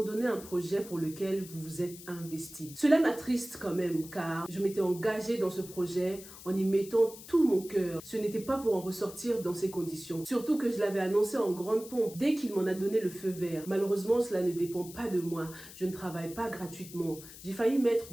un projet pour lequel vous vous êtes investi? Cela m'attriste quand même, car je m'étais engagée dans ce projet en y mettant tout mon cœur. Ce n'était pas pour en ressortir dans ces conditions. Surtout que je l'avais annoncé en grande pompe dès qu'il m'en a donné le feu vert. Malheureusement, cela ne dépend pas de moi. Je ne travaille pas gratuitement. J'ai failli mettre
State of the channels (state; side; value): noise; left; hiss, 16 dB below the sound